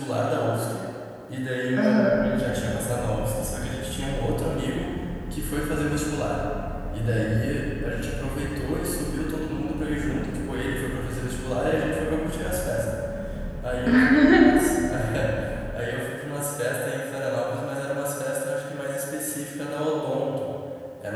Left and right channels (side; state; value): both; identical; correlation 1.00